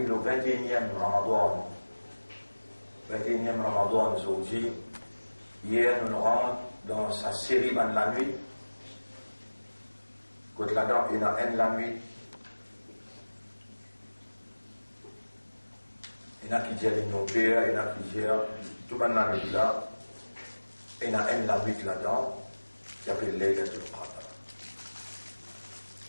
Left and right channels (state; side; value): inverted; both; correlation -1.00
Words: le 21e Ramadan, 21e Ramadan aujourd'hui, hier nous rentrons dans sa série de la nuit, quand là-dedans il y a un la nuit, il y en a qui disent nos pères, il y en a qui disent tout le la nuit là, il y en a un la nuit là-dedans, qui s'appelle Laylatul Qadr.